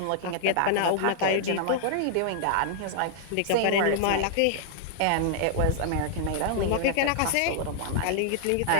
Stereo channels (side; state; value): both; different; correlation -0.01